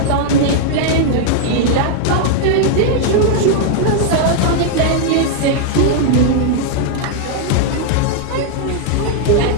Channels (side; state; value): both; different; correlation 0.00